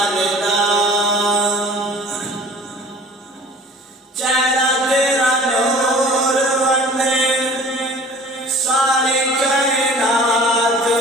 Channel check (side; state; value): both; normal; correlation 0.47